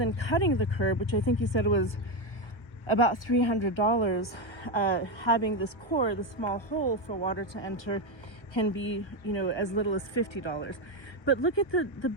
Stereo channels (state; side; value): late; right; 1.3 ms